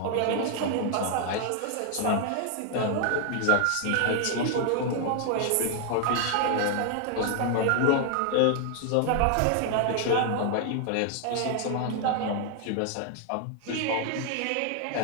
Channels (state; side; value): different; both; correlation 0.00